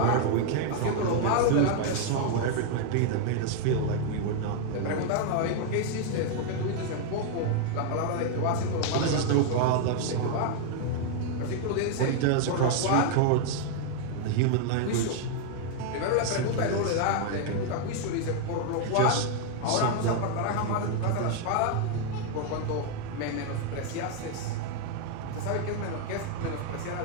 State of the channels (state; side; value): different; both; correlation 0.00